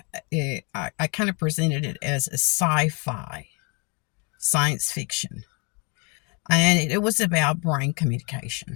I kind of presented it as a sci-fi, science fiction. And it was about brain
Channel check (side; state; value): right; quieter; 33.3 dB